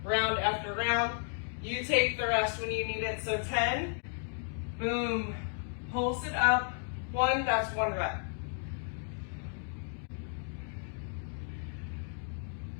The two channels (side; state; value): right; silent; 55 dB below the other